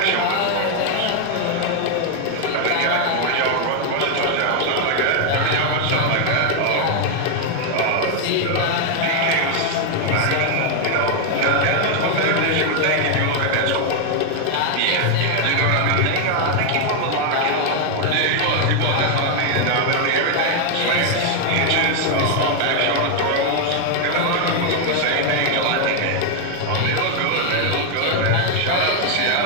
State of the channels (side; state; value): both; different; correlation 0.00